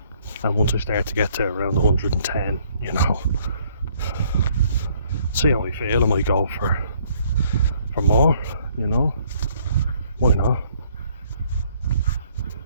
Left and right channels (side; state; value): both; inverted; correlation -0.64